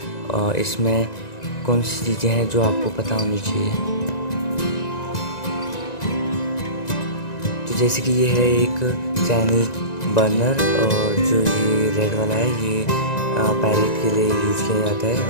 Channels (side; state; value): right; late; 1.9 ms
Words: इसमें कौन सी चीज़ें हैं जो आपको पता होनी चाहिए। तो जैसे कि ये है एक चाइनीज़ बर्नर, और जो ये रेड वाला है ये पैरेट के लिए यूज़ किया जाता है,